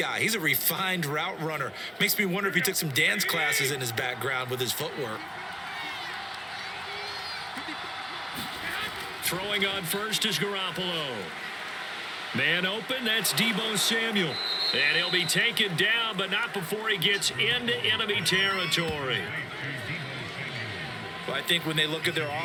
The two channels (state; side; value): identical; both; correlation 1.00